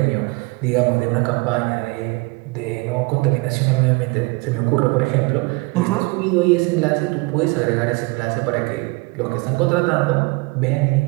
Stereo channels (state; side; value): quieter; left; 26.4 dB